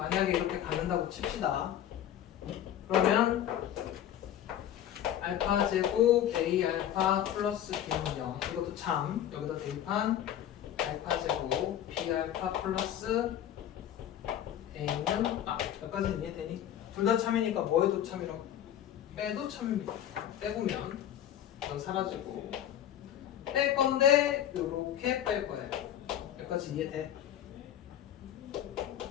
이렇게 갖는다고 칩시다. 그러면 알파 제곱 a 알파 플러스 b는 0. 이것도 참 여기다 대입한 알파 제곱 b 알파 플러스 a는 여기까지는 이해되니? 둘 다 참이니까 뭐 해도 참이라고? 빼도 참입니다. 빼보면 이건 사라지고 뺄 건데 요렇게 뺄 거예요. 여기까지 이해돼?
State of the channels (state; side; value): quieter; right; 10.9 dB